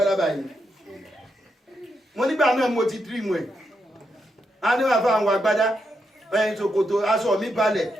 báyìí mo nígbà náà mo ti dream ẹ̀ a ní wà fún àwọn agbádá ẹ̀yìn ṣòkòtò aṣọ mi balẹ̀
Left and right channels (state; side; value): normal; both; correlation 0.83